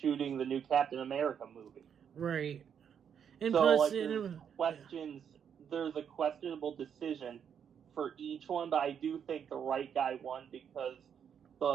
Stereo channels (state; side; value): quieter; left; 8.0 dB